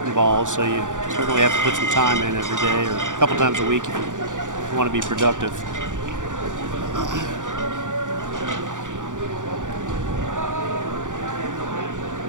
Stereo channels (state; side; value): late; left; 0.87 ms